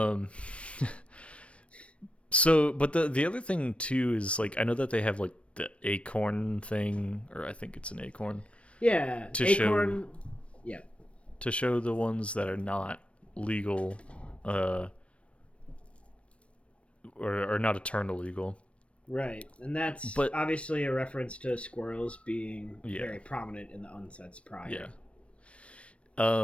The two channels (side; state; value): right; late; 0.061 ms